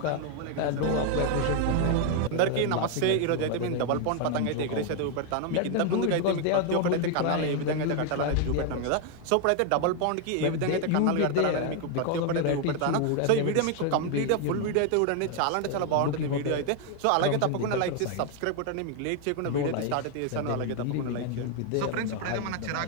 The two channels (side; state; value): both; different; correlation 0.01